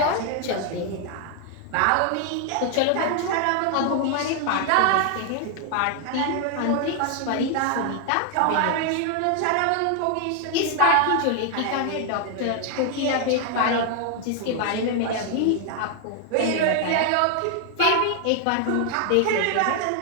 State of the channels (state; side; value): different; both; correlation 0.00